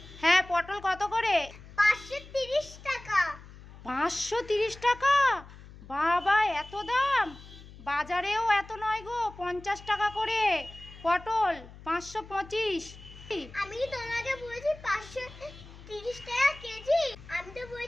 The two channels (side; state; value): left; noise; hum, 18 dB below the sound